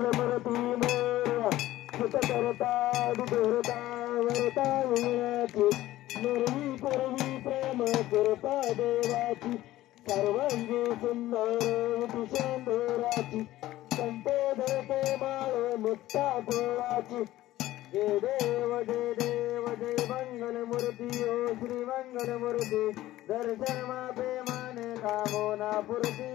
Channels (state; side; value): quieter; right; 15.5 dB